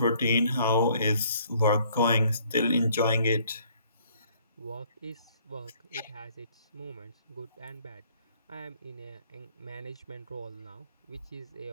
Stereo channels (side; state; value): both; inverted; correlation -0.62